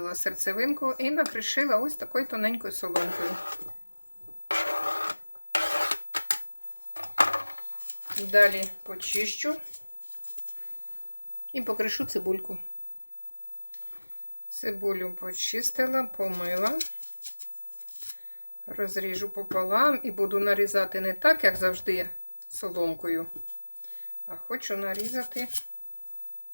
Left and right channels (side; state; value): both; inverted; correlation -1.00